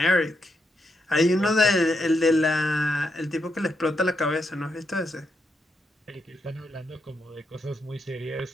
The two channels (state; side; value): normal; both; correlation 0.81